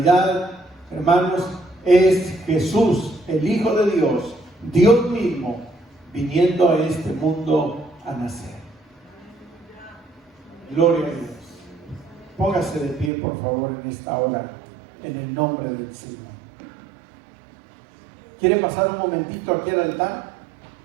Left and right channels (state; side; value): drops out; left; at 13.1 s